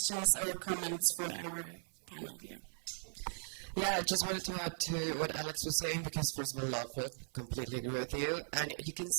or comments for our panel here. Yeah, I just wanted to add to what Alex was saying, because first of all, love it, completely agree with you. And you can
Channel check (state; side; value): silent; left; 52 dB below the other